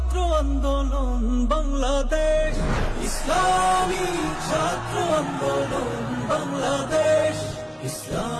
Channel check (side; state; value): both; identical; correlation 1.00